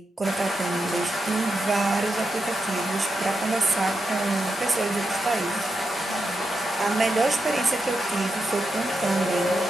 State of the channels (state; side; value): normal; both; correlation 0.86